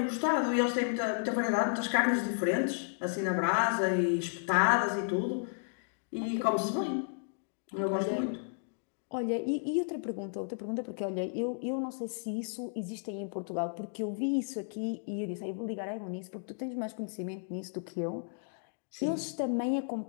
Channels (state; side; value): silent; right; digital silence